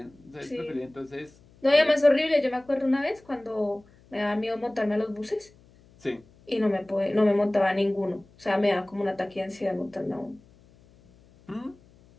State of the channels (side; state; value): left; noise; hum, 28 dB below the sound